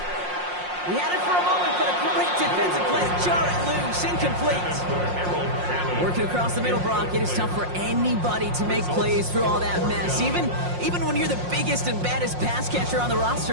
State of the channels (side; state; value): left; late; 5.6 ms